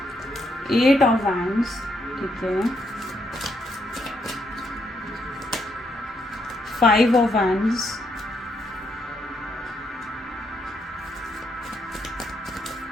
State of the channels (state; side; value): normal; both; correlation 0.77